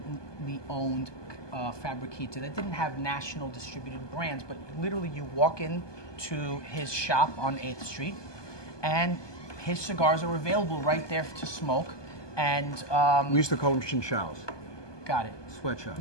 owned Fabriquita that didn't have national distributed brands, but literally you walk into his shop on 8th Street, and his cigars are available right there to smoke. And we used to call them chinchals. Got it. Sweatshop.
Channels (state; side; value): late; right; 1.2 ms